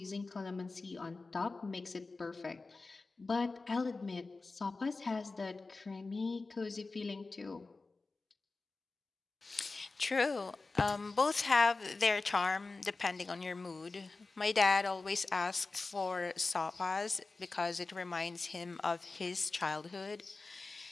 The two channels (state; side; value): quieter; right; 3.7 dB